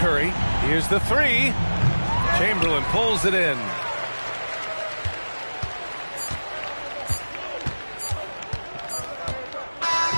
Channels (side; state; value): both; inverted; correlation -1.00